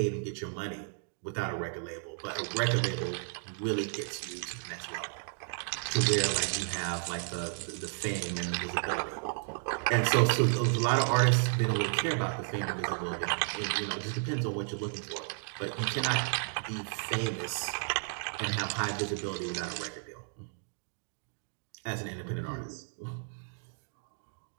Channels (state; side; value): silent; left; 56 dB below the other